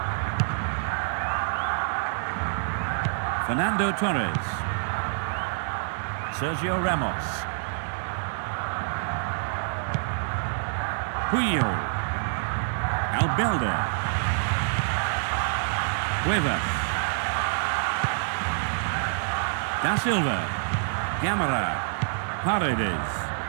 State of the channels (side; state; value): left; silent; 60 dB below the other